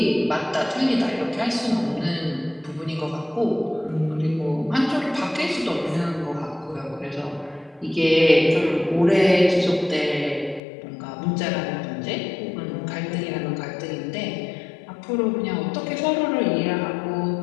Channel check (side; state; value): right; drops out; at 10.6 s